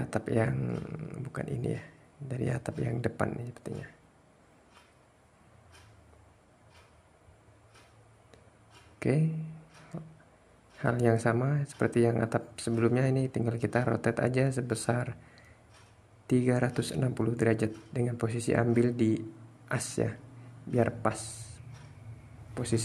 yang bukan ini ya, dari atap yang depan ini sepertinya. Oke. Hal yang sama seperti yang atap sebelumnya, ini tinggal kita rotate aja sebesar 360 derajat dengan posisi ambil di as ya, biar pas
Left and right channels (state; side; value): identical; both; correlation 1.00